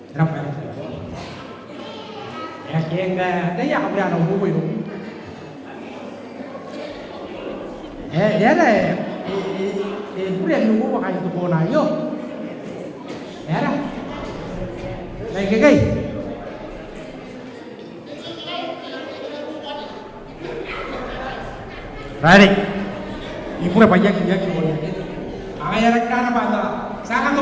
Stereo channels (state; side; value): identical; both; correlation 1.00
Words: ramai, ya kita, dah ya kita ada ubu itu, ya dah. Boleh nunggu makan itu pun ayo. Ya dah. Baik. Ready? Ibu apa ya ya ibu ya. Angaya rekana pada. Sangat